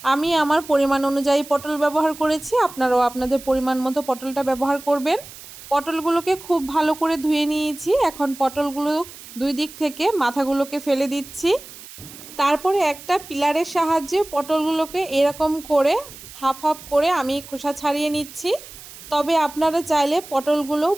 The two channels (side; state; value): right; noise; hiss, 16 dB below the sound